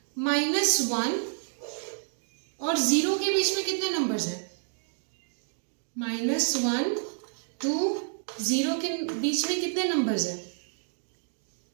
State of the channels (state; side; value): silent; left; digital silence